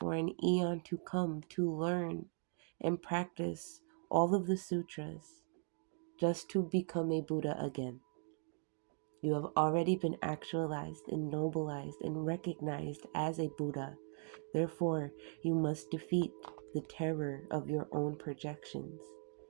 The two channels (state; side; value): silent; left; 52 dB below the other